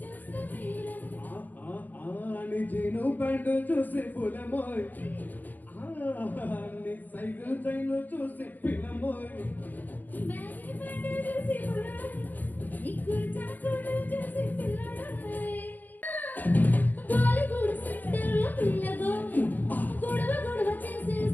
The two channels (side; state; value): right; late; 0.085 ms